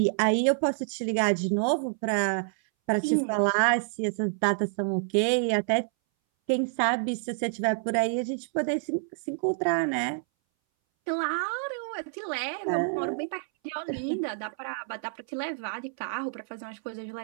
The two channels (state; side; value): silent; left; 59 dB below the other